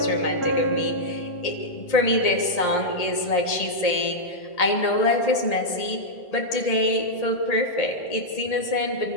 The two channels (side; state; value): right; late; 1.8 ms